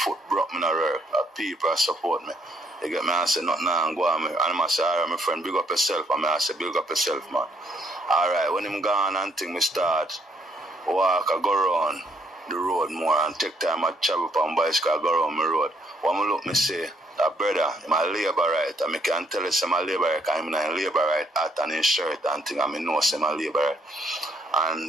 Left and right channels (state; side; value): normal; both; correlation 0.70